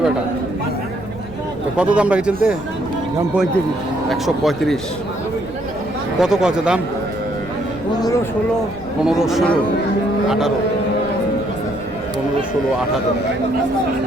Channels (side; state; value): right; noise; rumble, 19 dB below the sound